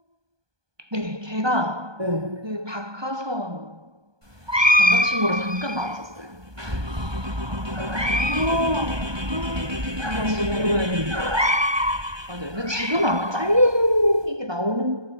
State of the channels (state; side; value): late; left; 1.2 ms